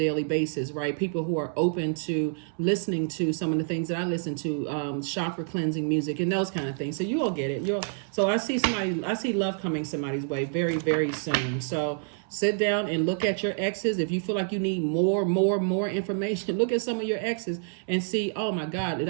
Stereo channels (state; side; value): silent; left; 58 dB below the other